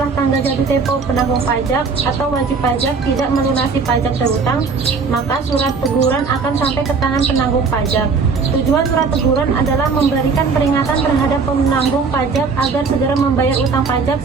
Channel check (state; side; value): quieter; left; 4.9 dB